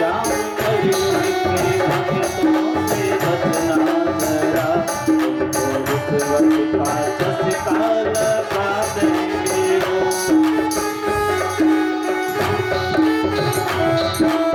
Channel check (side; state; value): both; identical; correlation 1.00